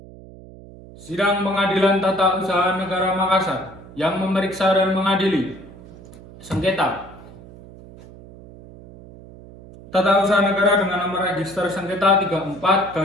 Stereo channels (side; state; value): right; noise; hum, 19 dB below the sound